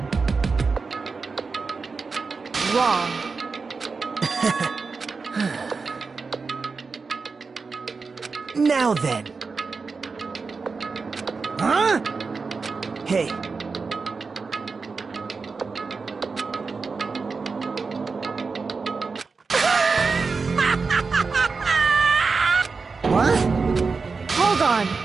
Wrong. Now then. Huh? Hey. What? Hold on.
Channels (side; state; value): left; quieter; 4.6 dB